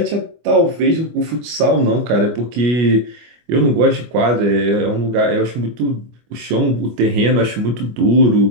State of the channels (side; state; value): left; late; 25 ms